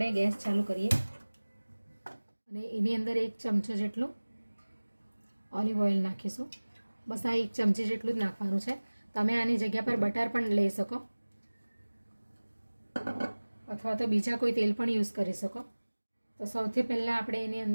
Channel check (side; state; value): both; inverted; correlation -1.00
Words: ગેસ ચાલુ કરીએ અને એની અંદર 1 ચમચો જેટલું ઓલિવ ઓઇલ નાખીશું. બસ આ 1 ચમચી જેટલું જ નાખવાનું છે. તમે આની જગ્યા પર બટર પણ લઈ શકો, અથવા તો બીજા કોઈ તેલ પણ યુઝ કરી શકો. તો સૌથી પહેલાં આપણે એની